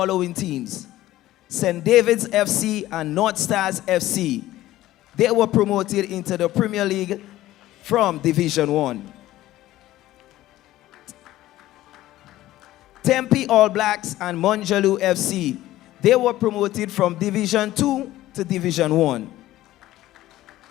teams: St. David's FC and North Stars FC. They were promoted into the Premier League from Division 1. Tempe All Blacks and Monjalu FC. They were promoted from Division 2 to Division 1.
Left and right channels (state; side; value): quieter; right; 15.3 dB